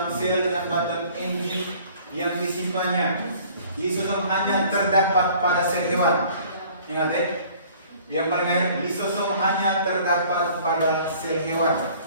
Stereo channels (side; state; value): both; inverted; correlation -0.53